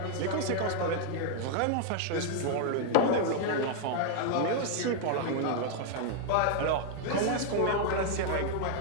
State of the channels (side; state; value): both; different; correlation 0.00